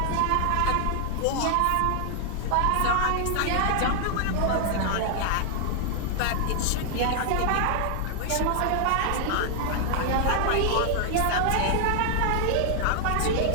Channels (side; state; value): both; different; correlation 0.00